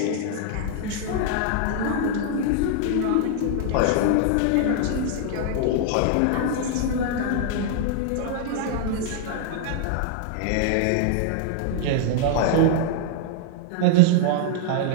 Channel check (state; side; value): different; both; correlation 0.00